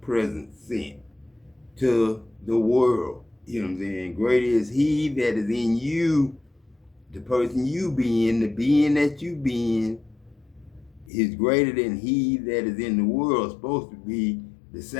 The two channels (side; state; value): right; drops out; at 11.1 s